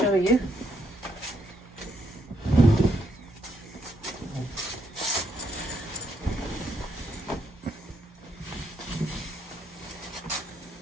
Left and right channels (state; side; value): normal; both; correlation 0.75